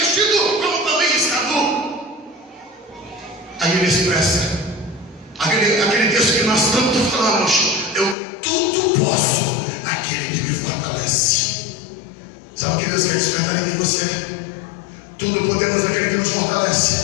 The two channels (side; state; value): right; drops out; at 8.2 s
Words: como também estar nu. Aí ele expressa aquele texto que nós tanto falamos: eu tudo posso naquele que me fortalece. Sabe o que Deus quer despertar em você? Tudo podemos naquele que nos